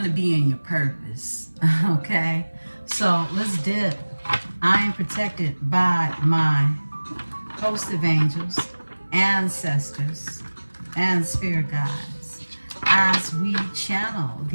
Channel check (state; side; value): inverted; both; correlation -1.00